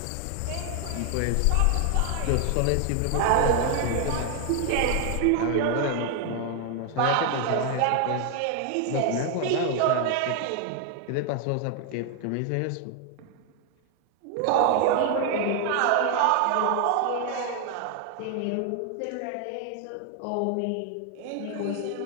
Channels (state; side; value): different; both; correlation 0.00